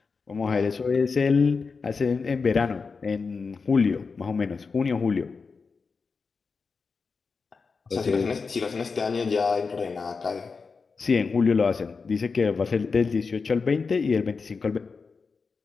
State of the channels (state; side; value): quieter; right; 4.8 dB